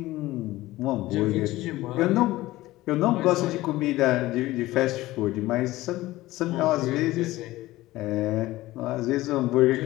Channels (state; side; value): quieter; right; 17.5 dB